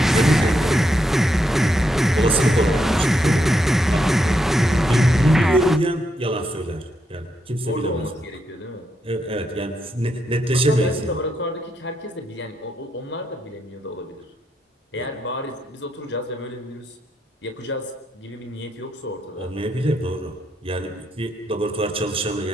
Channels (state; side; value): normal; both; correlation 0.80